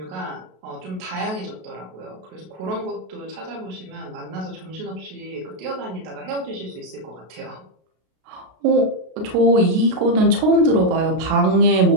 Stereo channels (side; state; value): left; late; 33 ms